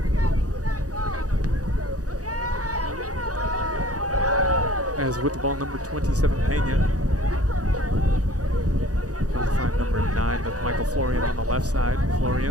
As with the ball, number 27, Pena Florian on the left side.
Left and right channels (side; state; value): left; late; 0.67 ms